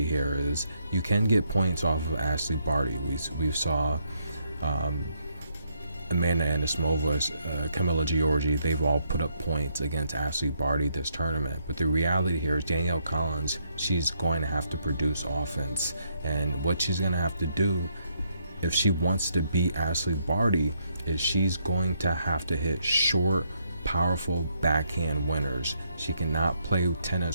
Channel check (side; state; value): both; inverted; correlation -0.74